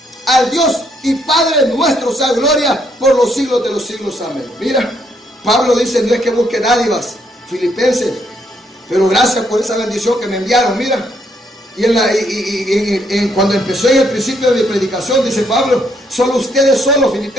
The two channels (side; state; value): both; normal; correlation 0.72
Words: Al Dios y Padre nuestro sea gloria por los siglos de los siglos. Amén. Mira, Pablo dice: no es que busque dádivas, filipenses, pero gracias por esa bendición que me enviaron. Mira, y cuando empezó en el principio de mi predicación, dice Pablo: solo ustedes solos,